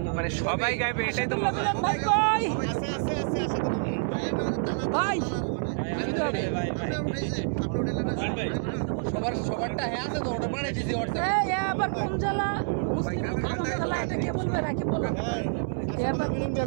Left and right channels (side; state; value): left; silent; 60 dB below the other